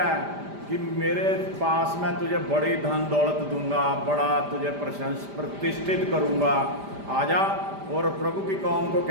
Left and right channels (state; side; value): late; left; 5.0 ms